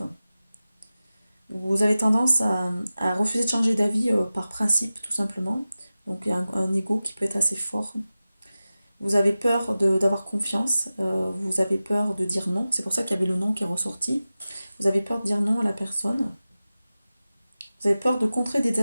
Vous avez tendance à refuser de changer d'avis par principe, tout simplement. Donc il y a un ego qui peut être assez fort. Vous avez peur d'avoir confiance, vous avez peur de dire non. C'est pour ça qu'il y avait le non qui est ressorti. Vous avez peur de dire non à la personne. Vous avez peur de contrer des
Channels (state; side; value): inverted; both; correlation -0.96